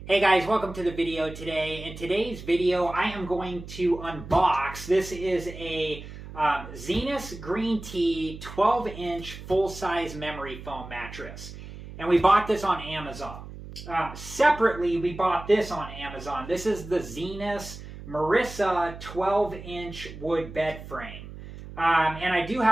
Hey guys, welcome to the video today. In today's video, I am going to unbox. This is a Zinus Green Tea 12-inch full-size memory foam mattress. And we bought this on Amazon. Separately, we bought this on Amazon. This is the Zinus Marissa 12-inch wood bed frame. And I do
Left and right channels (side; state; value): right; noise; hum, 13 dB below the sound